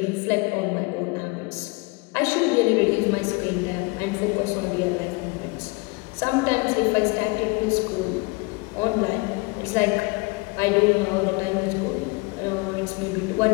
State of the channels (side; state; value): right; quieter; 27.0 dB